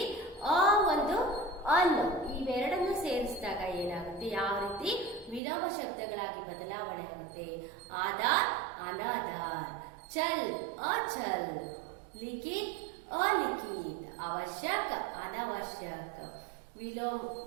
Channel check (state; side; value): drops out; left; at 5.4 s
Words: ಅ ಒಂದು ಅನ್ ಇವೆರಡನ್ನು ಸೇರಿಸಿದಾಗ ಏನಾಗುತ್ತೆ? ಯಾವ ರೀತಿ ವಿಲೋಮ ಶಬ್ದಗಳಾಗಿ ಬದಲಾವಣೆ ಆಗುತ್ತೆ? ಆಧಾರ್ ಅನಾಧಾರ್, ಚಲ್ ಅಚಲ್, ಲಿಖಿತ್ अलिखित, आवश्यक अनावश्यक. विलोम